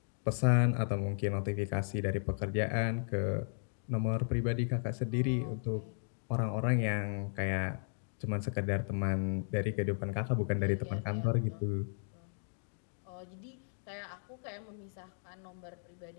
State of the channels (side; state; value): right; silent; digital silence